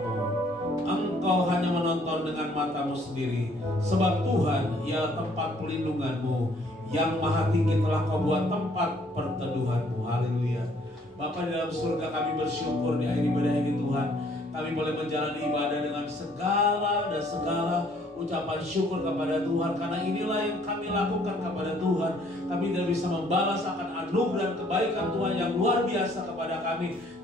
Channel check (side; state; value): both; normal; correlation 0.62